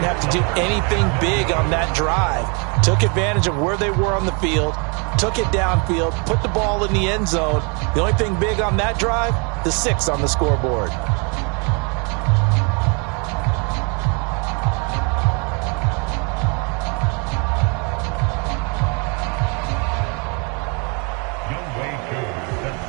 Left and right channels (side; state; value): left; quieter; 34.2 dB